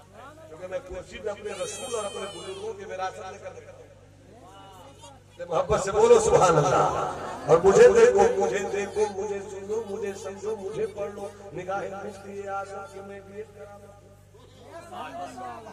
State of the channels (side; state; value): both; identical; correlation 1.00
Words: क्योंकि मैं कुर्सी पे अपने रसूल और अपने बुजुर्गों की विरासत लेकर मोहब्बत से बोलो सुभान अल्लाह। और मुझे देखो, मुझे देखो, मुझे सुनो, मुझे समझो, मुझे पढ़ लो, निगाहें मिलती है आशा कि मैं भी